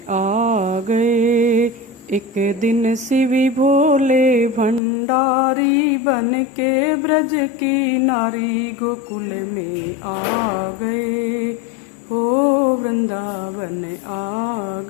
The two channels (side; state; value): right; drops out; at 4.8 s